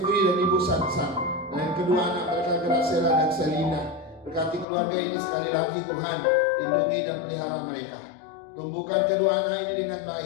dan Ibu Sansan, dan kedua anak mereka Gracela dan Selina, berkati keluarga ini sekali lagi Tuhan, lindungi dan pelihara mereka. Tumbuhkan kedua anak ini dengan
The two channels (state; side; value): drops out; right; at 4.7 s